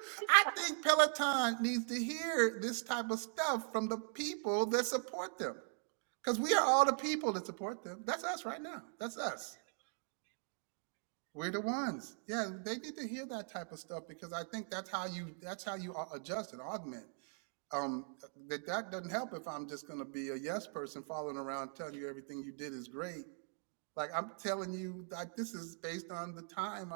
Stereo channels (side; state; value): left; silent; 51 dB below the other